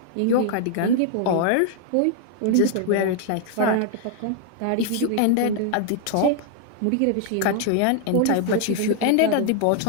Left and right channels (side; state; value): both; different; correlation 0.00